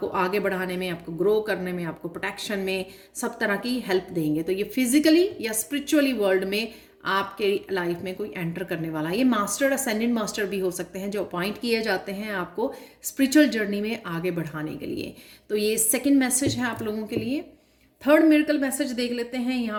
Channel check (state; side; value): identical; both; correlation 1.00